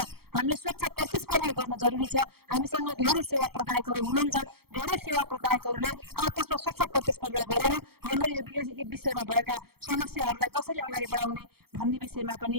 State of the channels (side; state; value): left; late; 0.95 ms